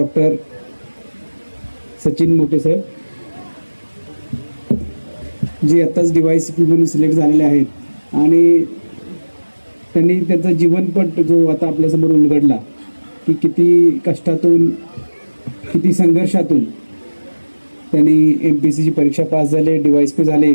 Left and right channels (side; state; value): both; inverted; correlation -1.00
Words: सचिन मोठे साहेब, जे आत्ताच DYCP म्हणून सिलेक्ट झालेले आहेत आणि त्यांनी त्यांचा जीवनपट जो आता आपल्यासमोर उलगडला की किती कष्टातून किती संघर्षातून त्यांनी MPSCची परीक्षा पास झाले, DYCP झाले.